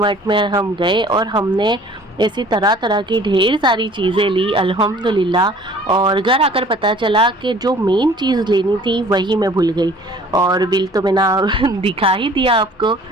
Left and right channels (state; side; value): normal; both; correlation 0.51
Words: में हम गए और हमने ऐसी तरह तरह की ढेर सारी चीज़ें ली अल्हम्दुलिल्लाह। और घर आकर पता चला कि जो मेन चीज़ लेनी थी वही मैं भूल गई और बिल तो मैंने दिखा ही दिया आपको।